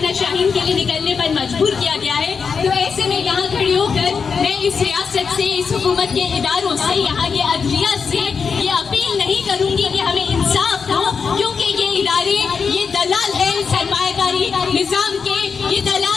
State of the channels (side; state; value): right; quieter; 5.7 dB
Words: شاہین کے لیے نکلنے پر مجبور کیا گیا ہے. تو ایسے میں یہاں کھڑی ہو کر میں اس ریاست سے، اس حکومت کے اداروں سے، یہاں کے عدلیہ سے یہ اپیل نہیں کروں گی کہ ہمیں انصاف دو، کیونکہ یہ ادارے یہ دلال ہے سرمایہ کاری نظام کے، یہ